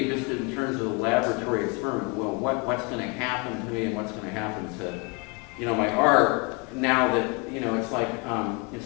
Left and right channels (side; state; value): right; quieter; 31.5 dB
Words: just in terms of the laboratory experiment, well, what's going to happen to me and what's going to happen to, my art now that, it's like, in